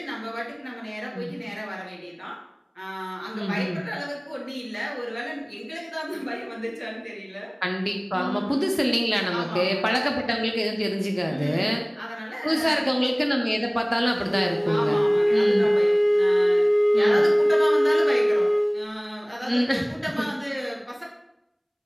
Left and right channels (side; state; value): both; identical; correlation 1.00